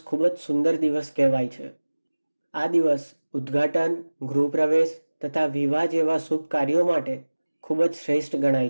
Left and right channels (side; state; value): both; inverted; correlation -1.00